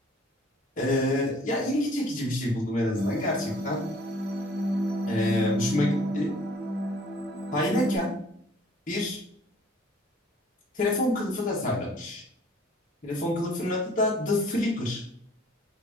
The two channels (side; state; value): both; normal; correlation 0.55